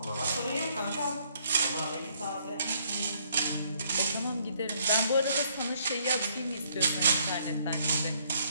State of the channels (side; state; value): both; inverted; correlation -0.67